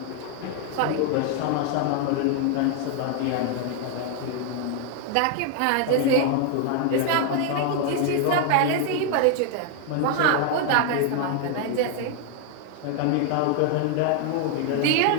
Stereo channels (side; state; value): both; different; correlation 0.00